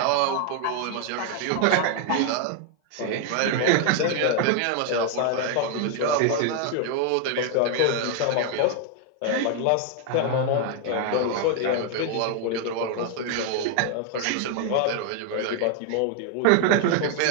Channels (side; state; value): both; different; correlation 0.00